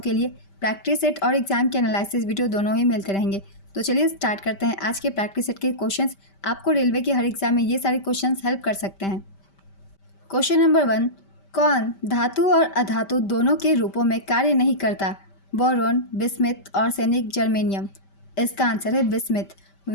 के लिए प्रैक्टिस सेट और एग्ज़ाम के एनालिसिस वीडियो दोनों ही मिलते रहेंगे। तो चलिए स्टार्ट करते हैं आज के प्रैक्टिस सेट के क्वेश्चंस। आपको रेलवे के हर एग्जाम में ये सारे क्वेश्चंस हेल्प कर सकते हैं। क्वेश्चन नंबर 1, कौन धातु और अधातु दोनों के रूपों में कार्य नहीं करता? बोरोन, बिस्मिथ और सैनिक जर्मेनियम। इसका आंसर है बिस्मिथ।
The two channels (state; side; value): late; right; 5.1 ms